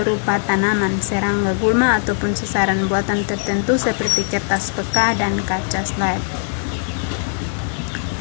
tanaman, serangga, gulma, ataupun sasaran buatan tertentu seperti kertas peka dan kaca slide.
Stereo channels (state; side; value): silent; right; 62 dB below the other